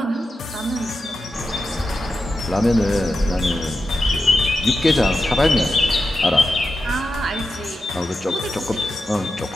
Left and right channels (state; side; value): normal; both; correlation 0.90